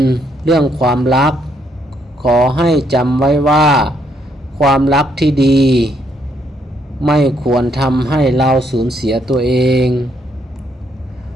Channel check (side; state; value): both; normal; correlation 0.73